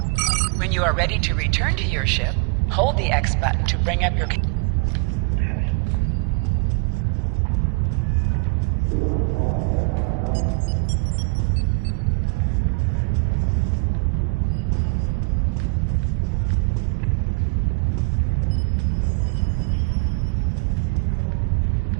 When you are ready to return to your ship, hold the X button to bring up your...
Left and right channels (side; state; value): left; quieter; 31.0 dB